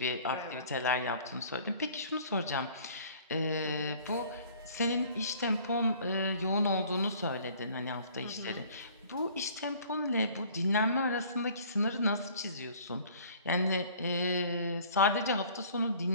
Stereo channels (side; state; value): both; inverted; correlation -0.52